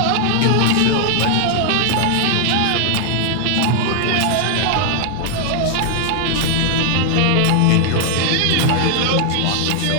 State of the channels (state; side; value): different; both; correlation 0.00